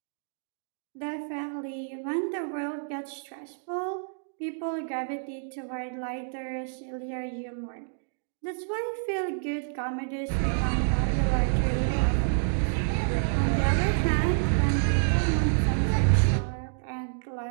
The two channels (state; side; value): silent; left; digital silence